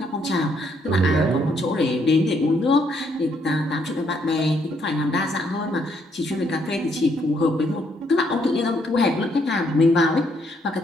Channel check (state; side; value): normal; both; correlation 0.71